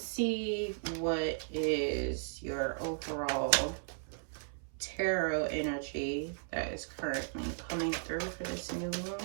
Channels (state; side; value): silent; left; 54 dB below the other